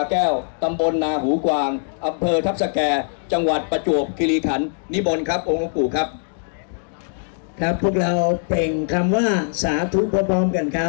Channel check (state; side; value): silent; right; digital silence